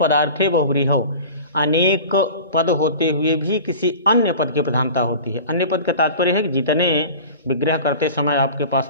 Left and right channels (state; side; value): inverted; both; correlation -0.38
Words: बहुब्रीहौ, अनेक पद होते हुए भी किसी अन्य पद की प्रधानता होती है। अन्य पद का तात्पर्य है कि जितने विग्रह करते समय आपके पास